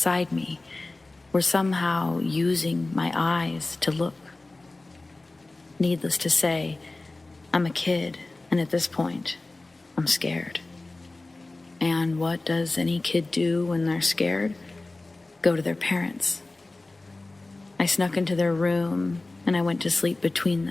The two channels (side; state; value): right; quieter; 3.1 dB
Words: me were somehow using my eyes to look. Needless to say, I'm a kid, and at this point, I'm scared. And what does any kid do when they're scared? Go to their parents. I snuck into their room and I went to sleep between